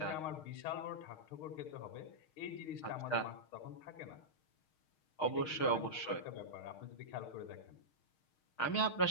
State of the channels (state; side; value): late; right; 6.5 ms